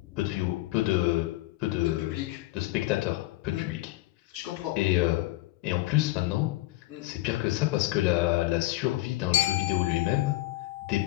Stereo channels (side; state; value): right; quieter; 18.2 dB